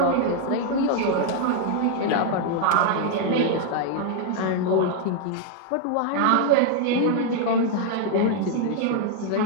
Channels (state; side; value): different; both; correlation 0.00